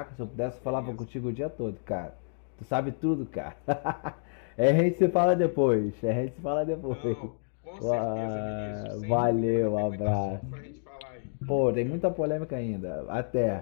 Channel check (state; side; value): silent; right; digital silence